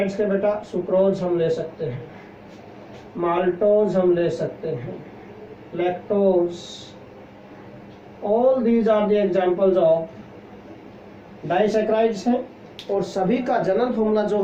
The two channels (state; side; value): identical; both; correlation 1.00